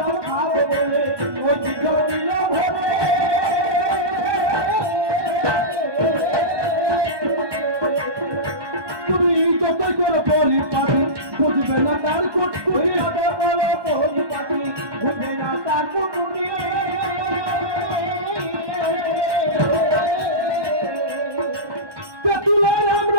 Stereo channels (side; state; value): left; late; 1.2 ms